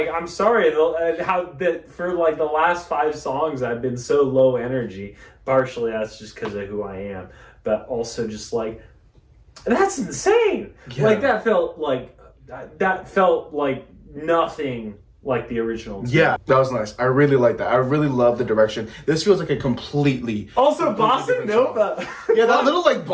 how that for like the last 5 songs I've been so low energy. Partially that's just because of who I am, but also just like that's insane. Yeah. Like that felt like nothing like the original. Yeah, that was nice. I really like that. I really love the direction. This feels like a completely Bossa Nova. Yeah, that little like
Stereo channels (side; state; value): both; identical; correlation 1.00